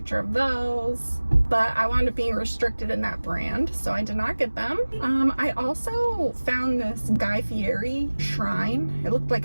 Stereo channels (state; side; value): inverted; both; correlation -1.00